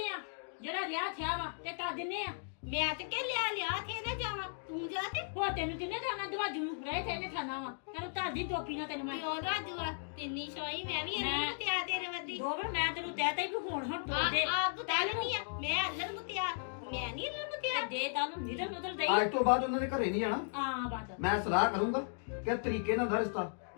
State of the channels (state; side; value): silent; right; digital silence